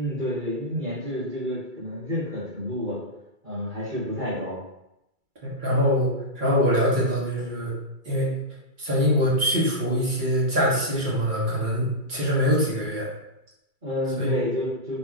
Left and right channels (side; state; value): left; late; 2.3 ms